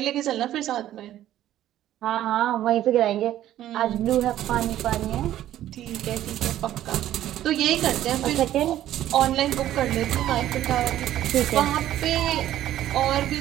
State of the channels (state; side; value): quieter; left; 12.8 dB